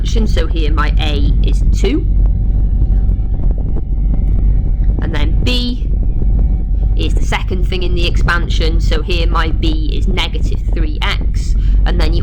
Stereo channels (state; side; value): identical; both; correlation 1.00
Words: so here my a is 2, and then b is the second thing in the expansion, so here my b is negative 3x, and then